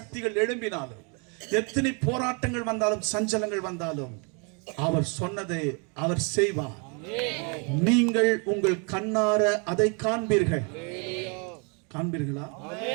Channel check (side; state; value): left; quieter; 35.1 dB